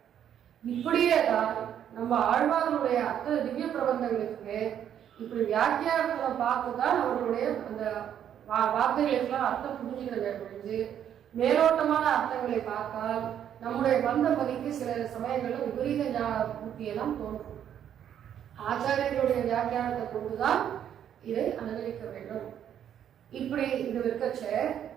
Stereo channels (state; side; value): quieter; left; 9.7 dB